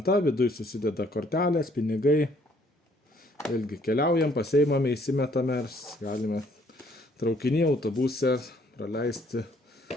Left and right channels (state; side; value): normal; both; correlation 0.64